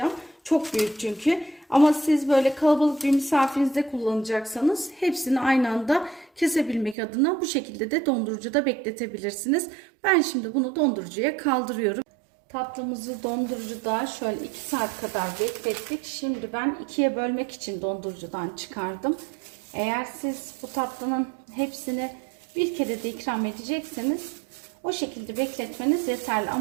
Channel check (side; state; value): left; drops out; at 7.0 s